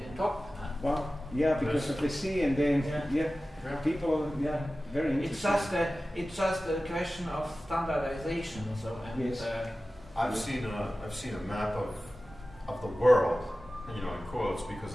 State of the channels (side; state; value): both; normal; correlation 0.96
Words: top. Wow, yeah, because of the sea, and then people, very interesting. It's just a question of standardization. So I've seen a map of the world, in quotes,